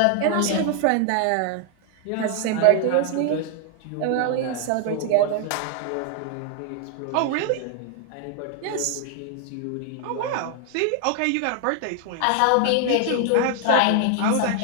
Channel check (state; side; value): different; both; correlation 0.00